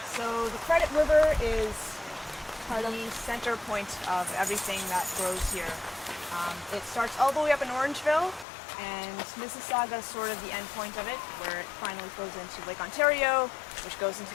So the Credit River is the center point of everything that grows here. It starts all the way up in Orangeville, and Mississauga is sort of the end point of it, where it finally flows into Lake Ontario, which goes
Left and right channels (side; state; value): right; drops out; at 8.5 s